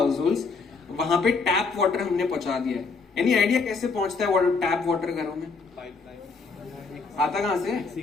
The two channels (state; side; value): quieter; right; 4.5 dB